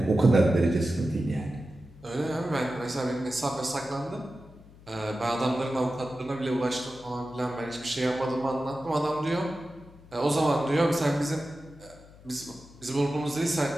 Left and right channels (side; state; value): left; noise; hum, 22 dB below the sound